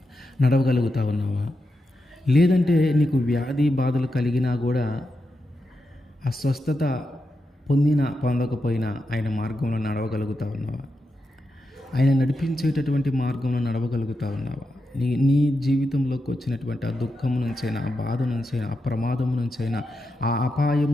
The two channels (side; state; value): both; normal; correlation 0.87